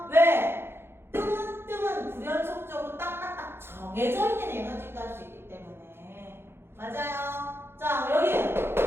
왜? 뜸은 불연속적으로 딱딱딱 정해져 있는 에너지 값이 있기 때문에 맞아요. 자, 여기.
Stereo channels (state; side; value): late; left; 0.11 ms